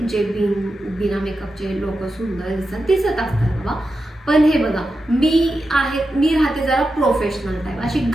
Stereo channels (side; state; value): both; normal; correlation 0.90